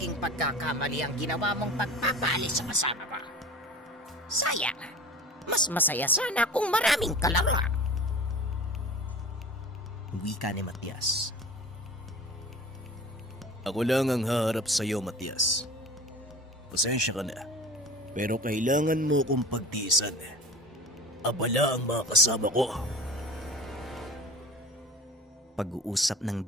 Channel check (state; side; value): normal; both; correlation 0.38